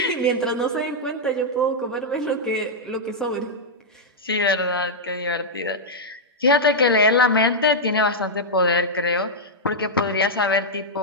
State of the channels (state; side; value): normal; both; correlation -0.06